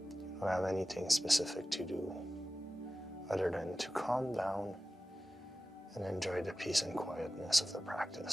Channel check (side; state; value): both; normal; correlation 0.95